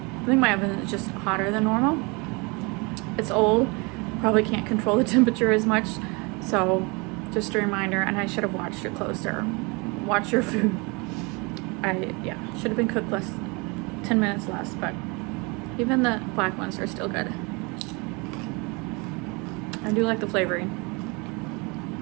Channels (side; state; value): left; quieter; 28.5 dB